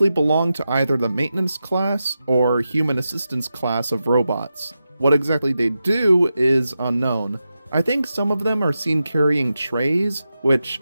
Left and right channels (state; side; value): inverted; both; correlation -0.90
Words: belong to either the maintenance class or human assistance class of robots. What exactly they do is unknown. I think some of them are seen carrying trays, which